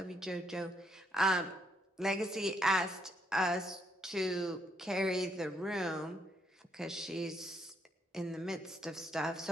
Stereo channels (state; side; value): normal; both; correlation 0.73